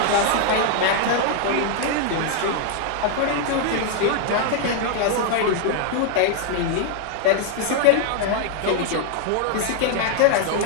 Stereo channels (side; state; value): both; different; correlation 0.00